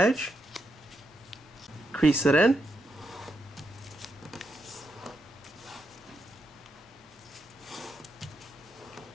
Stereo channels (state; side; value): normal; both; correlation 0.83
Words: Crease it in.